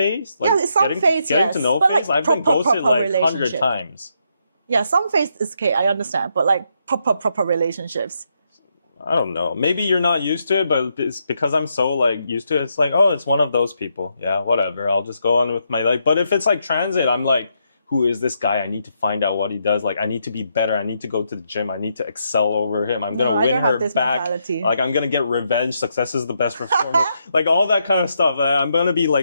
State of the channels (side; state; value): both; inverted; correlation -0.79